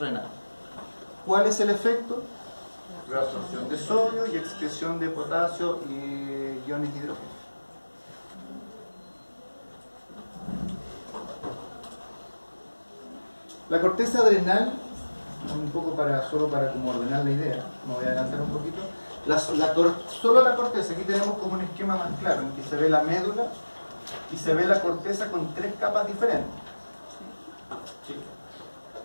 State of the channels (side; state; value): both; inverted; correlation -1.00